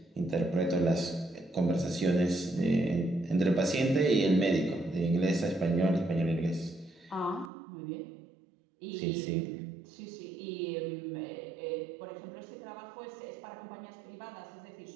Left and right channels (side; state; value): left; drops out; at 7.5 s